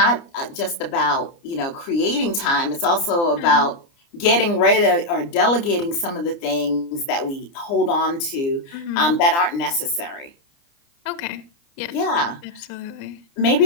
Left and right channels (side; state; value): right; late; 29 ms